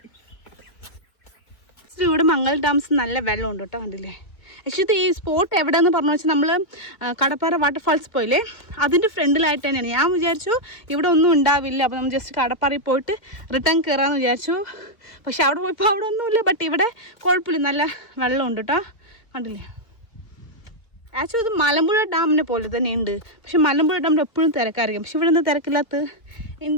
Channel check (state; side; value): late; right; 2.1 ms